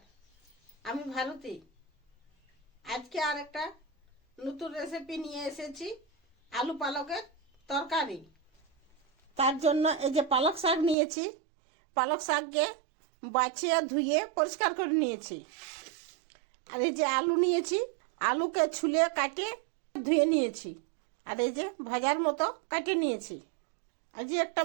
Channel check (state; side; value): drops out; left; at 11.0 s